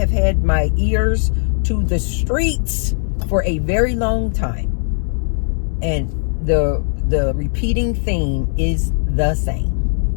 had my ears to the streets for a very long time. And the repeating theme is the same.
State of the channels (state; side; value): silent; right; 67 dB below the other